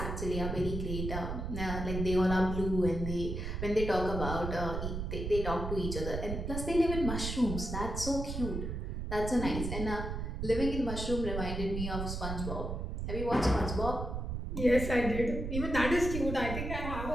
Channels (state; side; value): noise; right; rumble, 4 dB below the sound